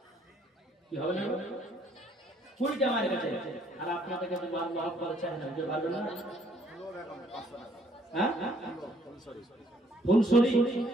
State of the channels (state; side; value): normal; both; correlation 0.65